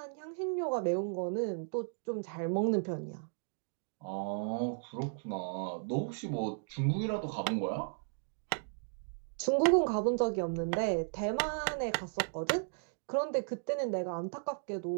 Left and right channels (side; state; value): left; silent; digital silence